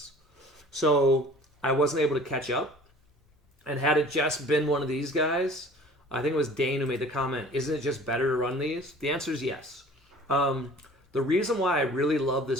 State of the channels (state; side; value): normal; both; correlation 0.47